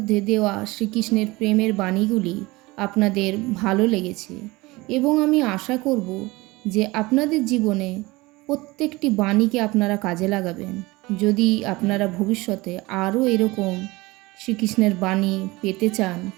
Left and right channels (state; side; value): quieter; left; 21.8 dB